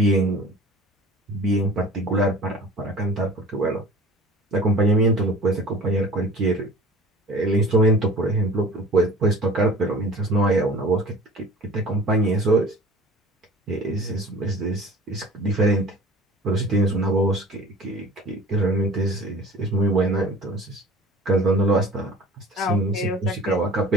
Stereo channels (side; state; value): both; normal; correlation 0.43